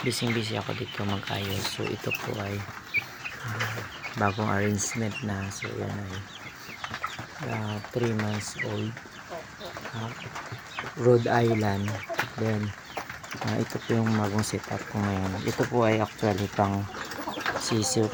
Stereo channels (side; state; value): both; identical; correlation 1.00